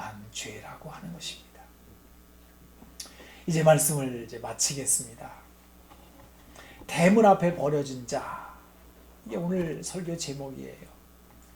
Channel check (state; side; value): identical; both; correlation 1.00